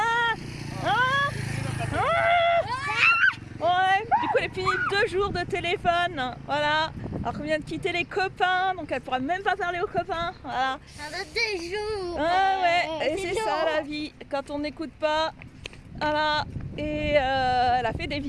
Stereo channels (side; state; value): both; identical; correlation 1.00